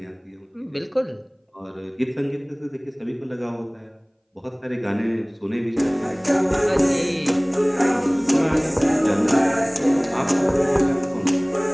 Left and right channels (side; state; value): both; identical; correlation 1.00